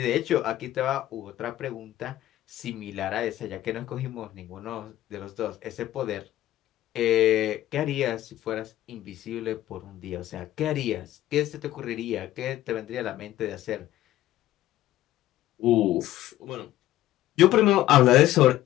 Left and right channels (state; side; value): quieter; right; 14.3 dB